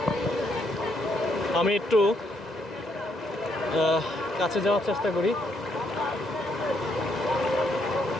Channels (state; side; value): normal; both; correlation 0.74